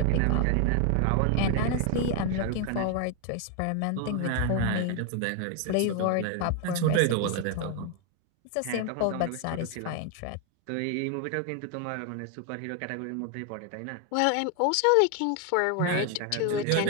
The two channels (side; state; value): both; different; correlation 0.01